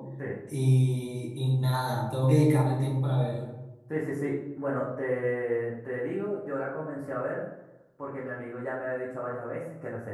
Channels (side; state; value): both; identical; correlation 1.00